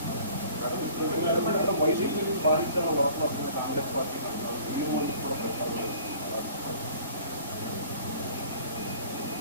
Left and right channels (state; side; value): inverted; both; correlation -0.50